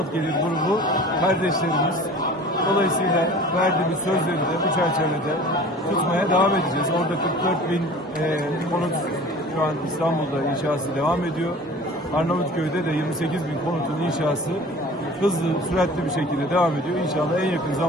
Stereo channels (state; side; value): normal; both; correlation 0.43